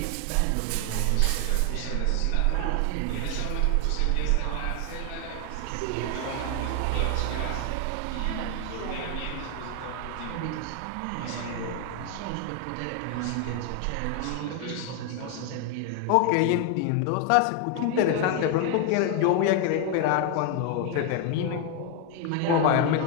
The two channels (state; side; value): different; both; correlation 0.01